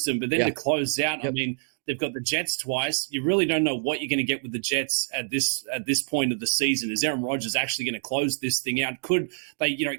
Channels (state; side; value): silent; left; digital silence